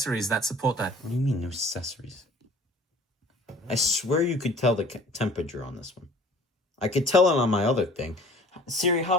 that support that. What do you mean, no accessories? I swear you could tell the temperature on this one. I could tell it on my other thing. Siri, how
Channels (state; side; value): normal; both; correlation 0.49